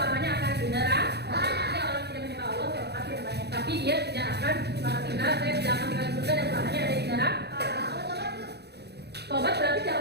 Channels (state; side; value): late; left; 0.48 ms